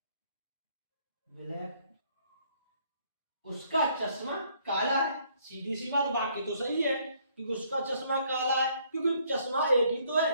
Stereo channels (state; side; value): inverted; both; correlation -0.65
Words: ब्लैक, उसका चश्मा काला है। सीधी सी बात, बाकी तो सही है क्योंकि उसका चश्मा काला है, क्योंकि चश्मा एक ही तो है,